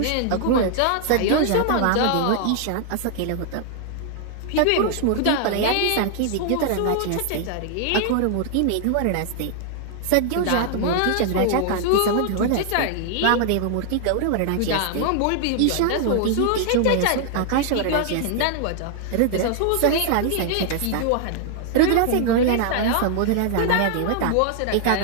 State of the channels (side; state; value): both; different; correlation 0.00